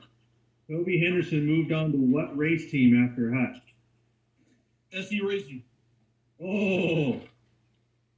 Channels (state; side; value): identical; both; correlation 1.00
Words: Toby Henderson moved on to what race team after Hutch? SE Racing. Oh,